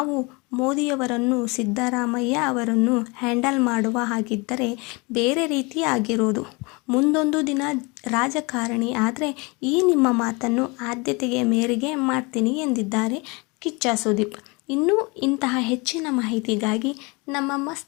ಮೋದಿಯವರನ್ನು ಸಿದ್ದರಾಮಯ್ಯ ಅವರನ್ನು ಹ್ಯಾಂಡಲ್ ಮಾಡುವ ಹಾಗಿದ್ದರೆ ಬೇರೆ ರೀತಿ ಆಗಿರೋದು. ಮುಂದೊಂದು ದಿನ ರಾಜಕಾರಣಿ ಆದರೆ ಈ ನಿಮ್ಮ ಮಾತನ್ನು ಆದ್ಯತೆಗೆ ಮೇರೆಗೆ ಮಾಡ್ತೀನಿ ಎಂದಿದ್ದಾರೆ ಕಿಚ್ಚ ಸುದೀಪ್. ಇನ್ನೂ ಇಂತಹ ಹೆಚ್ಚಿನ ಮಾಹಿತಿಗಾಗಿ ನಮ್ಮ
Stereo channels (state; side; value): quieter; right; 27.6 dB